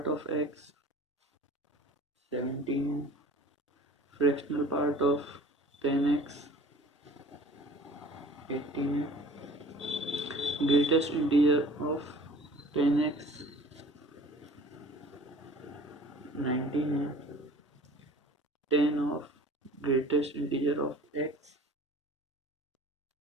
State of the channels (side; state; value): both; normal; correlation 0.46